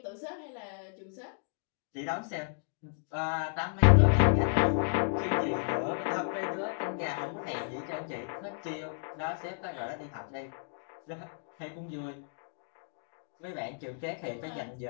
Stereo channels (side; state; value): right; silent; digital silence